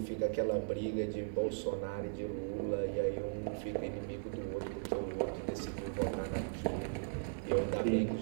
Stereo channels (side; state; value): left; silent; digital silence